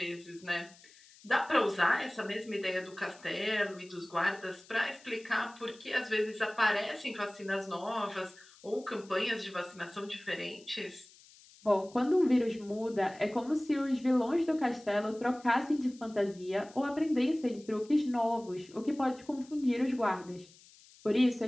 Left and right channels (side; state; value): left; noise; hiss, 24 dB below the sound